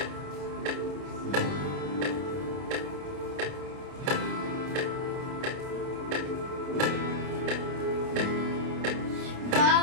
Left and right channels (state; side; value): late; left; 29 ms